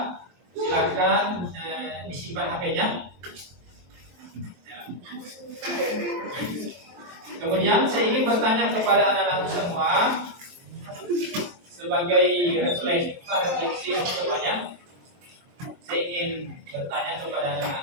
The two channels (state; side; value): late; left; 23 ms